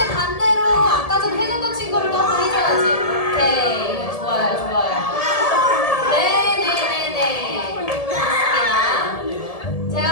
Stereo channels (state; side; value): late; right; 1.7 ms